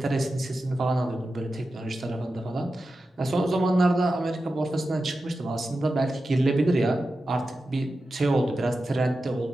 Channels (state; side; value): normal; both; correlation 0.92